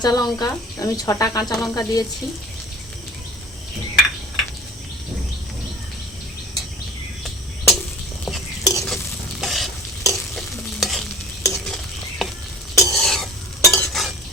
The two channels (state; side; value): normal; both; correlation 0.43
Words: লঙ্কা, আমি 6টা কাঁচা লঙ্কা দিয়েছি।